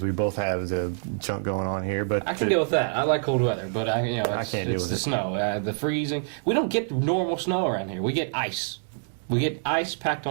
we both have the junk going on here. But I can deal with that. I like cold weather, but I can't deal it's with the it. snow, the freezing. We don't get normal snow around here. We get ice. We get ice packed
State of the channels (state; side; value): silent; left; digital silence